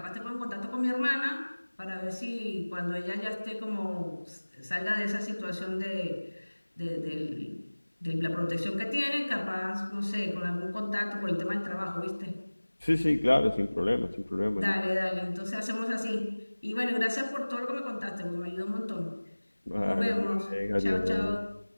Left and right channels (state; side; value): inverted; both; correlation -1.00